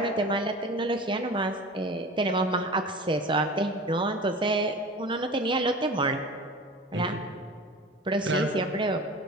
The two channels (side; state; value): both; normal; correlation 0.36